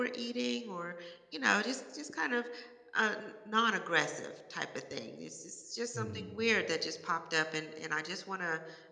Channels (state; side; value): identical; both; correlation 1.00